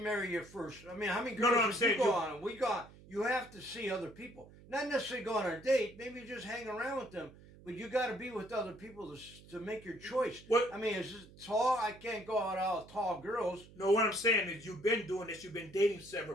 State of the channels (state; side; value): noise; right; hum, 21 dB below the sound